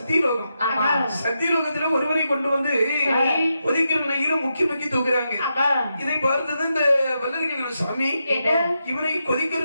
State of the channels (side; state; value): both; inverted; correlation -0.86